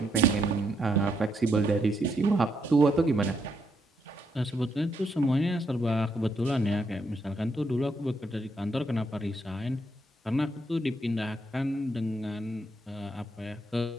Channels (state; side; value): normal; both; correlation 0.77